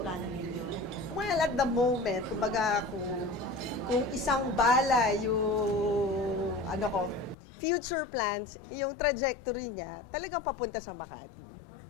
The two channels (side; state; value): right; drops out; at 7.4 s